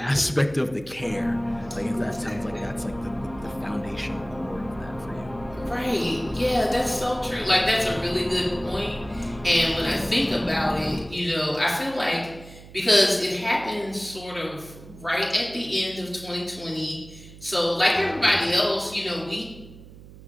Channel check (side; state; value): right; noise; hum, 18 dB below the sound